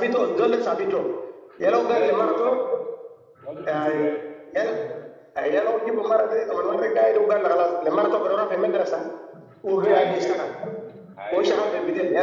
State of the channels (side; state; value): both; identical; correlation 1.00